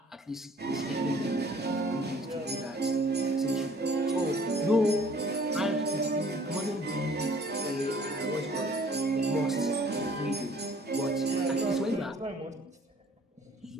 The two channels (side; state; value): both; normal; correlation 0.55